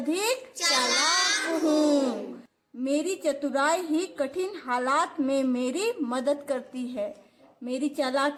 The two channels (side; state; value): both; identical; correlation 1.00